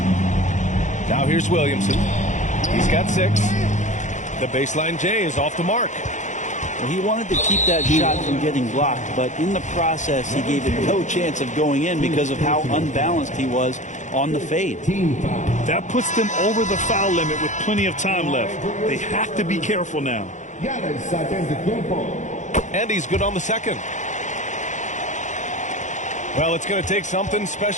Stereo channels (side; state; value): right; late; 0.35 ms